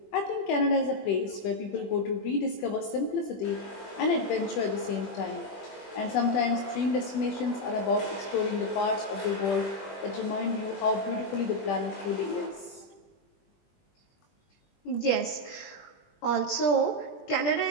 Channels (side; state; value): right; late; 20 ms